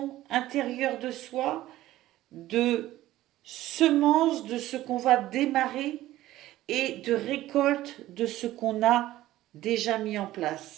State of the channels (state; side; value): quieter; left; 15.2 dB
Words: intérieure de soi, de semence de ce qu'on va démarrer et de récolte de ce qu'on a déjà mis en